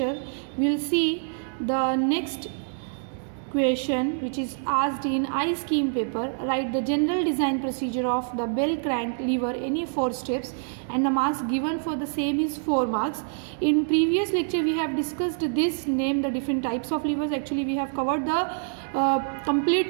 we will see the next question which is asked in I-scheme paper. Write the general design procedure of the bell crank lever, any 4 steps, and the marks given for the same is 4 marks. In previous lecture we have discussed this, name the different types of levers. Actually we have covered the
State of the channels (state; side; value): silent; left; digital silence